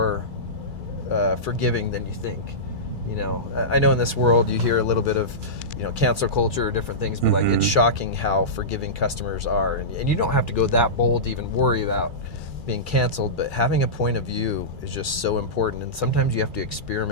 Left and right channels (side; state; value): left; late; 2.3 ms